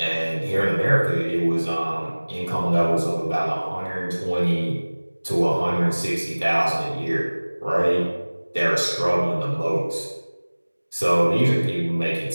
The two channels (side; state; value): both; inverted; correlation -1.00